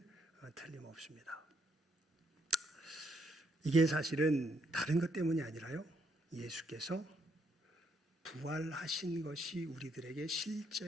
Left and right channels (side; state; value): both; normal; correlation 0.74